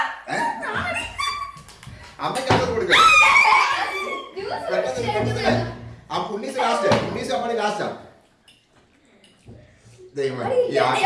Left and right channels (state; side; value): identical; both; correlation 1.00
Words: അമ്മയ്ക്ക് കൊടുക്കാം. ആ പുണ്ണീസ് ലാസ്റ്റ്. പുണ്ണീസ് അമ്മണി ലാസ്റ്റാ. ദൈവമേ ഈ